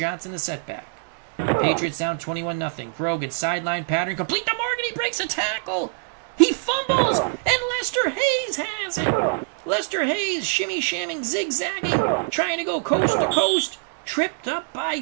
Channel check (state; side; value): silent; left; 62 dB below the other